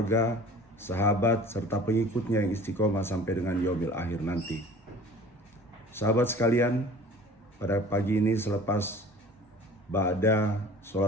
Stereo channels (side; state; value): both; normal; correlation 0.45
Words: sahabat serta pengikutnya yang istiqomah sampai dengan yaumil akhir nanti. Sahabat sekalian, pada pagi ini selepas ba'da